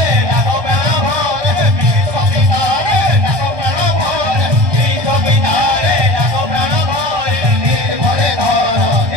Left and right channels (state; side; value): late; left; 1.2 ms